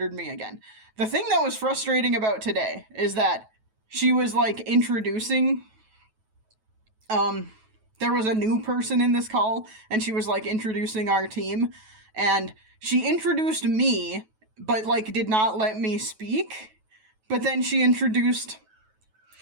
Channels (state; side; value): late; left; 9.2 ms